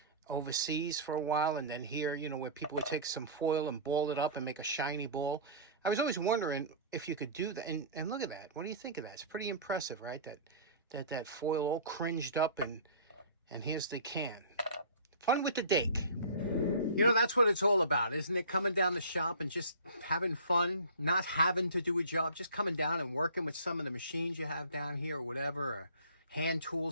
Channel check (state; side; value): inverted; both; correlation -0.40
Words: overseas for a while, and then here, you know, where people would take some foil and ball it up and make a shiny ball. I was always wondering if you could do that. And look at that. What do you think of that? It's pretty impressive, right? That foil all cringed up, and here's the can. Fun with the Dake. You know, that's what it's all about, isn't it? Coming down the shop and just having fun, not having to do a job, just coming down and working with some of the machines you have down here or whatever, or hand